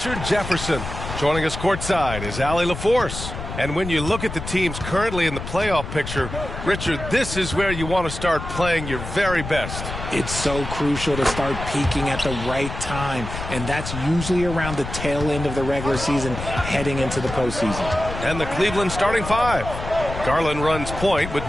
Jefferson. Joining us courtside is Allie LaForce. And when you look at the teams currently in the playoff picture, Richard, this is where you want to start playing your very best. It's so crucial to start peaking at the right time, and that's usually around the tail end of the regular season heading into the postseason. And the Cleveland starting five. Garland runs point with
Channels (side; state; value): left; noise; rumble, 8 dB below the sound